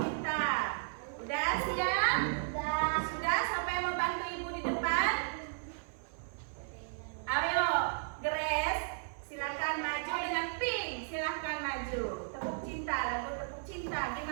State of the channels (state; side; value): silent; left; 55 dB below the other